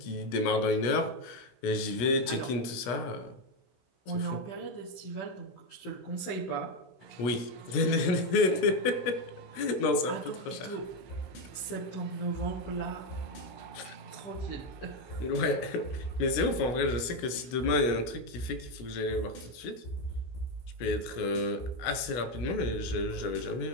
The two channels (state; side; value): late; right; 16 ms